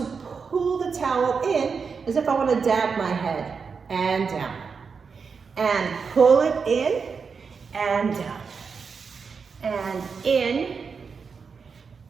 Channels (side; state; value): left; quieter; 5.5 dB